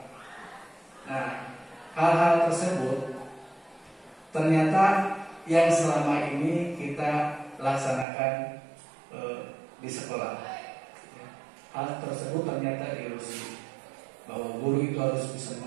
Nah, hal-hal tersebut ternyata yang selama ini kita laksanakan di sekolah. Hal tersebut ternyata ilusi bahwa guru itu harus bisa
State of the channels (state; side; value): drops out; left; at 8.1 s